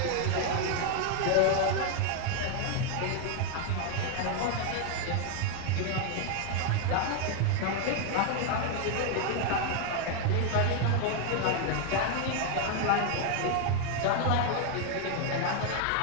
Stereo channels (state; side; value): different; both; correlation 0.00